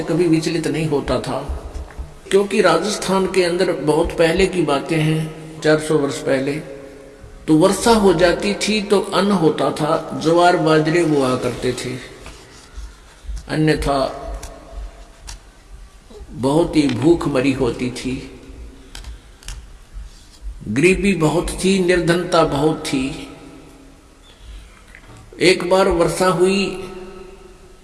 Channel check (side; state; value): both; identical; correlation 1.00